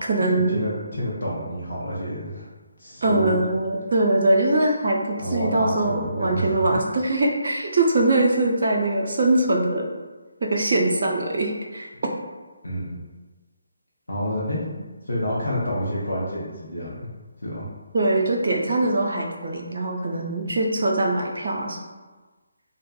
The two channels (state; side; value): inverted; both; correlation -0.74